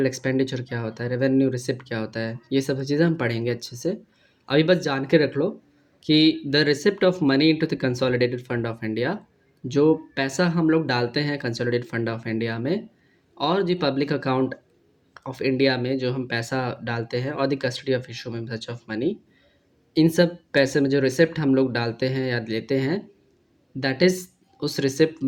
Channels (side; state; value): both; identical; correlation 1.00